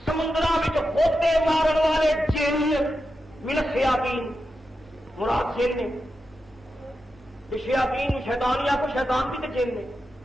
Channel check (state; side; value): normal; both; correlation 0.89